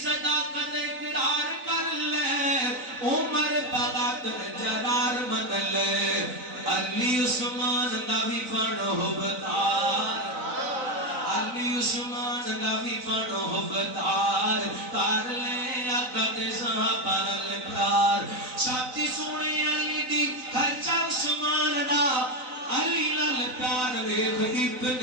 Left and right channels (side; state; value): left; late; 4.0 ms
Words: सदाकत इकरार कर ले उमर बगातर जरार मन ले अली उस्मान दा भी पढ़ो बतार अली उस्मान दा भी पढ़ो बतार कर ले कद सहाबा नल प्यार साथी सुने अली दी खर्चा उस्मान दा अली नाल प्यार वेख